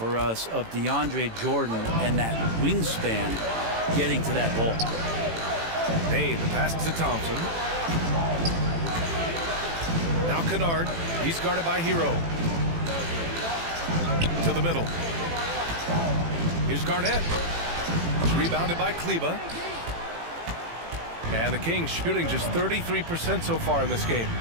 us of DeAndre Jordan and that wingspan getting to that ball. Bane, the pass to Thompson. Now Kennard. He's guarded by Hero. To the middle. Here's Garnett. It's rebounded by Kleber. And the Kings shooting just 33% so far in this game.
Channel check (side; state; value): left; late; 18 ms